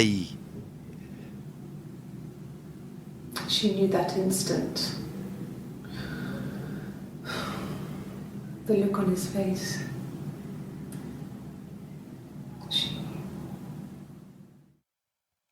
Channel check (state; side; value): identical; both; correlation 1.00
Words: She knew that instant. The look on his face.